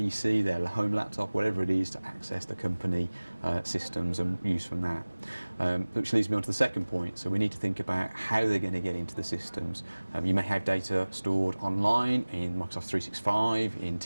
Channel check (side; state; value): both; inverted; correlation -1.00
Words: their home laptop, whatever it is, to access the company systems and use from that. Which leads me on to the second point. So we need to think about how they're going to get into the systems. You may have data stored online in Microsoft 365, in